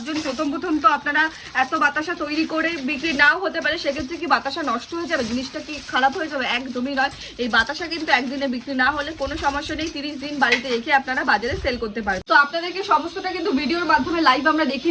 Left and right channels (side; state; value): both; identical; correlation 1.00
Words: প্রথম তো আপনারা এত বাতাসা তৈরি করে বিক্রি নাও হতে পারে, সেক্ষেত্রে কি বাতাসা নষ্ট হয়ে যাবে, জিনিসটা কি খারাপ হয়ে যাবে? একদমই নয়। এই বাতাসা কিন্তু একদিনে বিক্রি না হলে কোনো সমস্যা নেই, 30 দিন বাড়িতে রেখে আপনারা বাজারে সেল করতে পারেন। তো আপনাদেরকে সমস্তটা কিন্তু ভিডিওর মাধ্যমে লাইভ আমরা